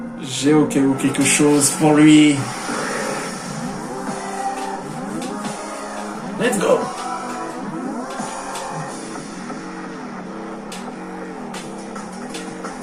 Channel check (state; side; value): identical; both; correlation 1.00